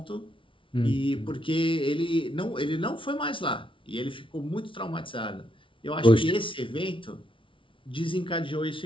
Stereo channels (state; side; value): late; right; 0.25 ms